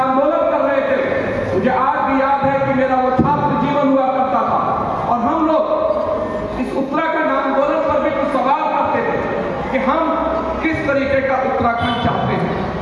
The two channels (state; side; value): identical; both; correlation 1.00